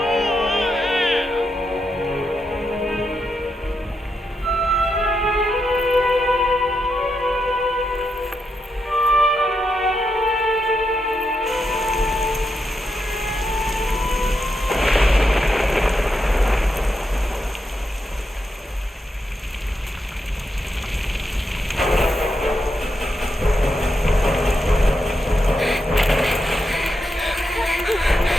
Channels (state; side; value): normal; both; correlation 0.84